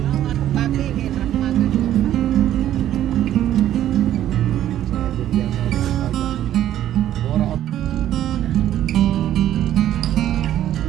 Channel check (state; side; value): quieter; left; 12.0 dB